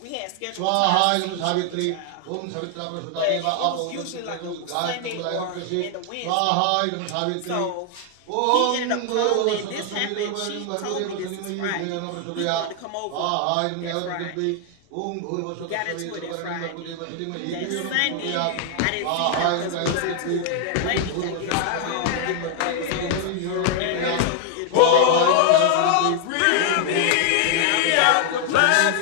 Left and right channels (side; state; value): both; different; correlation 0.00